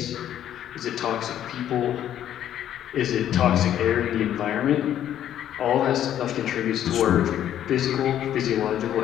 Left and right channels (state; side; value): quieter; right; 10.9 dB